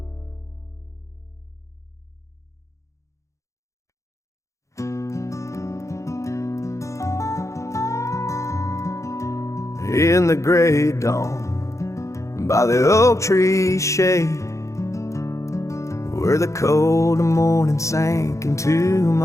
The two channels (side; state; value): right; late; 0.15 ms